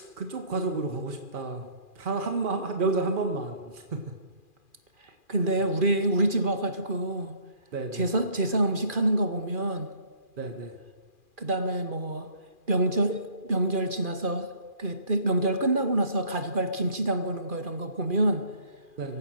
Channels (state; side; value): late; left; 2.4 ms